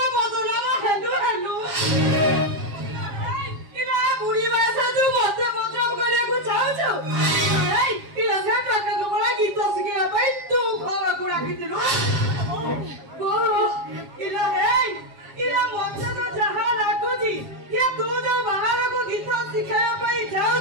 बदलावा हेलु हेलु इना बुढ़ी वैसे तू मते बदलाव करे को चाहो छो ए इला से टका को बड़ा गीत सिखे भाई तू खबर कुड़ा की दिलो ओ इला ए इला मते तो जहां लागो जी ये तू जो बाहर को गीत सिखाया पाई जाओ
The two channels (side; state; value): left; late; 7.4 ms